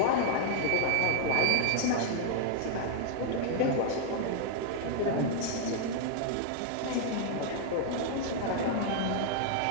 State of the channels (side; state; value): both; different; correlation -0.01